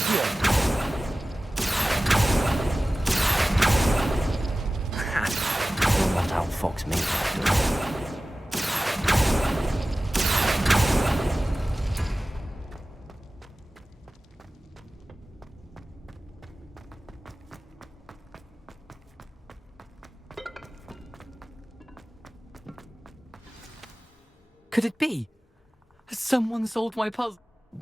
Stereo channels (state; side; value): normal; both; correlation 0.96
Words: You'll not outfox me, Jackdaw. Could it be? Has someone solved my puzzle?